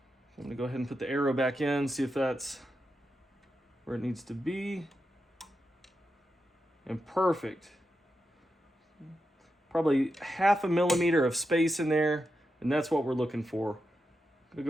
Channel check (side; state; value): both; normal; correlation 0.87